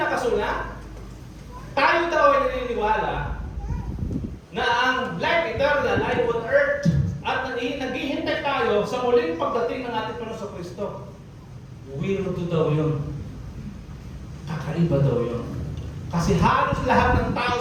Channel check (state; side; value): identical; both; correlation 1.00